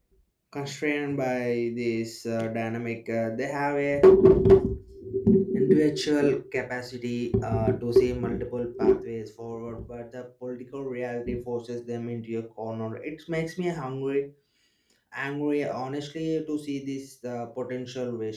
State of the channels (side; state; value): both; identical; correlation 1.00